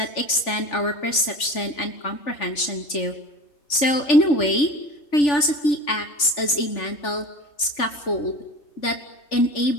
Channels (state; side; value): late; right; 3.4 ms